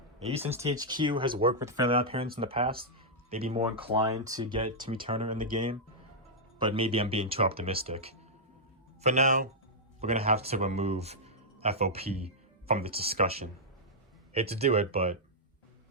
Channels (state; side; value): normal; both; correlation -0.07